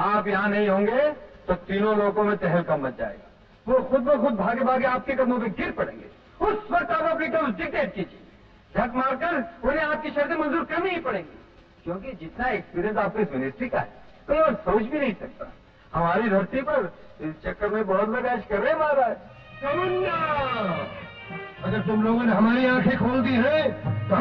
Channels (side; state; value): both; identical; correlation 1.00